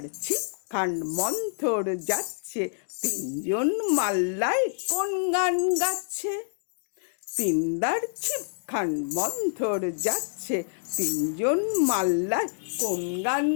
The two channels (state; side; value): silent; right; digital silence